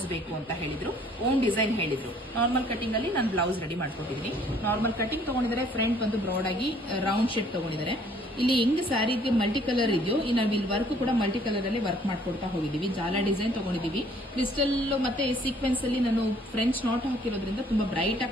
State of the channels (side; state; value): both; normal; correlation 0.60